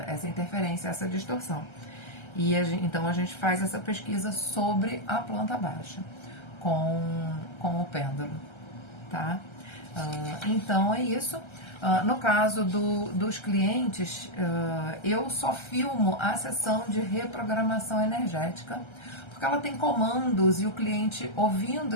interferência, essa distorção. E então a gente faz essa pesquisa sobre a planta baixa com o pêndulo, tá? Então é isso. No caso dos clientes, eu só filmo a sessão de reprogramação energética, porque ela tem comandos e o cliente,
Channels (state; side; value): late; right; 1.3 ms